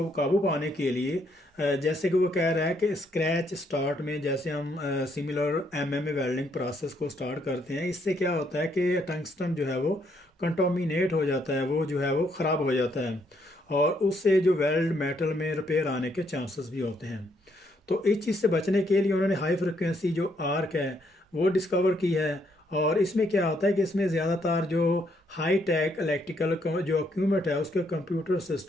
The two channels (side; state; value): both; normal; correlation 0.72